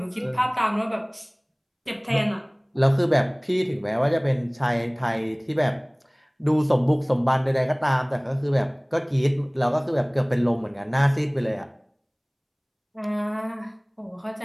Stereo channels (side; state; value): both; identical; correlation 1.00